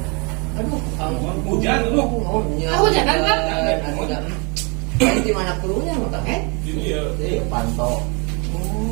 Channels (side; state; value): left; quieter; 30.7 dB